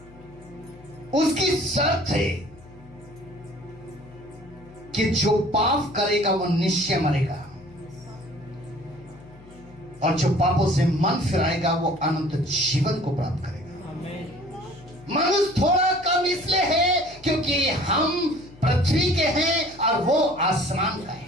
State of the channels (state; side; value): noise; left; hum, 23 dB below the sound